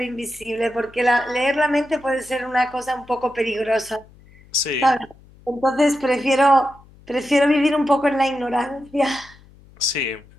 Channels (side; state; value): left; noise; hum, 25 dB below the sound